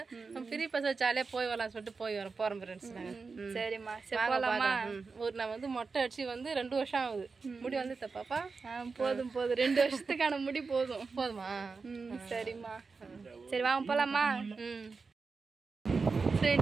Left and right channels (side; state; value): left; quieter; 4.6 dB